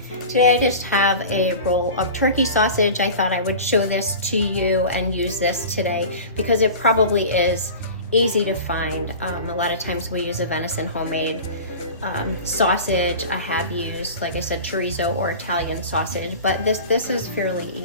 Today I just have a roll of turkey sausage. I thought I would show this to you and use this today because it probably is easy to find. A lot of times we use a venison homemade sausage. I have used, like I said, chorizo or Italian sausage, but this is fairly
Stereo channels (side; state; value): both; inverted; correlation -0.36